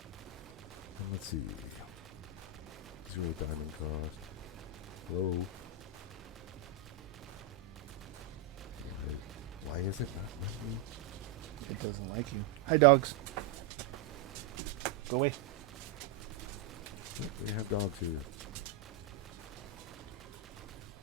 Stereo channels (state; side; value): quieter; left; 6.4 dB